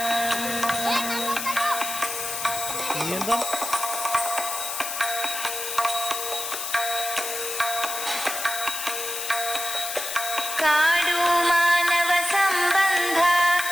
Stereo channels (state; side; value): noise; left; hiss, 5 dB below the sound